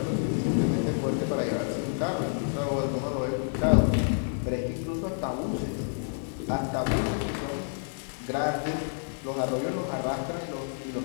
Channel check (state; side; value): silent; right; digital silence